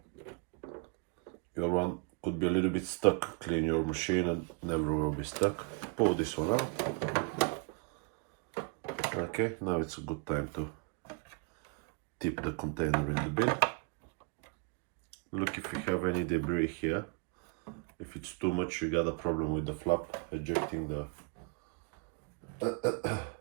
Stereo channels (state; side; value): quieter; left; 34.9 dB